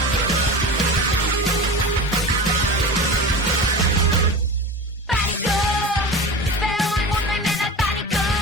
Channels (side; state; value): both; normal; correlation 0.30